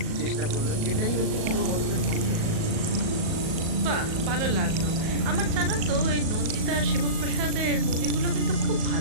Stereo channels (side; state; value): left; late; 37 ms